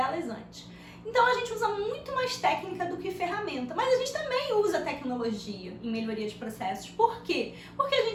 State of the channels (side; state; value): both; identical; correlation 1.00